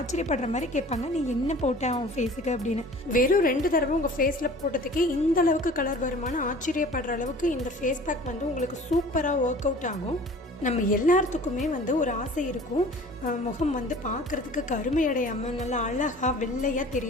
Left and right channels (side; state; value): both; normal; correlation 0.45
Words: மாதிரி கேட்பாங்க, நீ என்ன போட்ட உன் ஃபேஸுக்கு அப்படின்னு. வெறும் 2 தடவை உங்கள் ஃபேஸில் போட்டதுக்கே இந்த அளவுக்கு கலர் வருமானு ஆச்சரியப்படுற அளவுக்கு இந்த ஃபேஸ் பேக் வந்து உங்களுக்கு சூப்பராக ஒர்க் அவுட் ஆகும். நம்ம எல்லாத்துக்குமே வந்து ஒரு ஆசை இருக்கும், முகம் வந்து பார்க்குறதுக்கு கருமையடையாமல் நல்லா அழகாக வெள்ளையாக